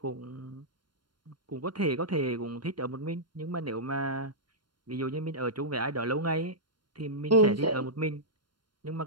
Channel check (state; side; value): late; left; 0.72 ms